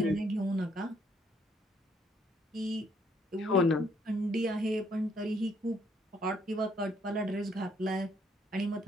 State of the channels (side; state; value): both; normal; correlation 0.68